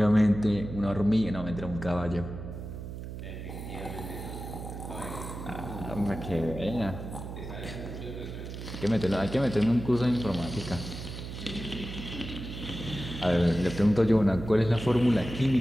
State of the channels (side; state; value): right; noise; hum, 9 dB below the sound